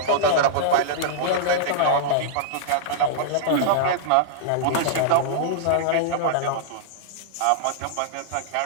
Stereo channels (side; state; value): both; different; correlation -0.02